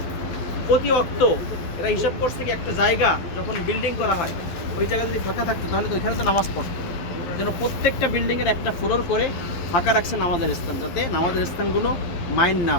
প্রতি অক্ত এরা হিসাব করছে কি একটা জায়গা যখন বিল্ডিং করা হয়, ওই জায়গা যদি ফাঁকা থাকতো তাহলে তো ওইখানে তো নামাজ পড়তো, যেন প্রত্যেকটা বিল্ডিংয়ের একটা ফ্লোর করে ফাঁকা রাখছে নামাজের স্থান, যাতে নামাজের স্থানগুলো মাইন্ড না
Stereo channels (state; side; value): late; right; 12 ms